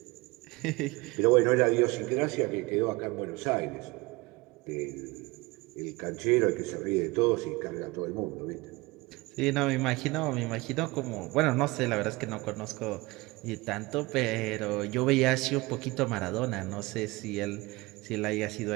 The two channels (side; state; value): left; quieter; 22.9 dB